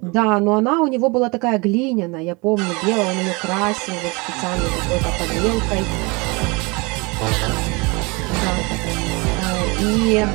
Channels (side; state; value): left; quieter; 27.6 dB